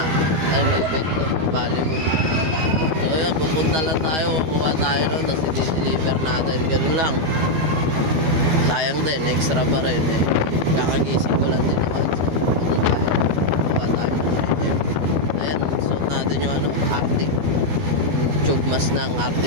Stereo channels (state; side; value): late; left; 12 ms